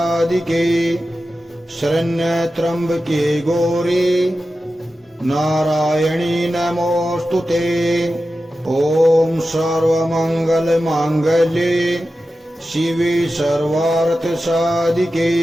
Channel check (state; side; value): normal; both; correlation 0.93